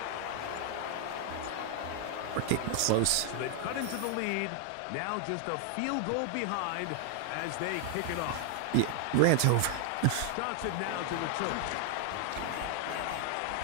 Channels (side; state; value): both; different; correlation 0.00